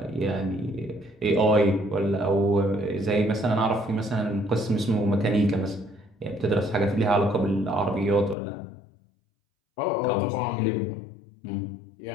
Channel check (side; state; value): right; drops out; at 8.3 s